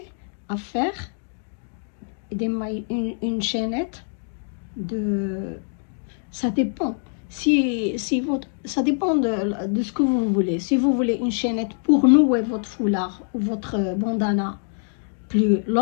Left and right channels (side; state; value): right; silent; 61 dB below the other